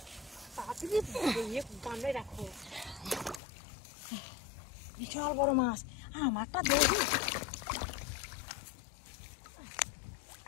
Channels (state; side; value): drops out; right; at 3.4 s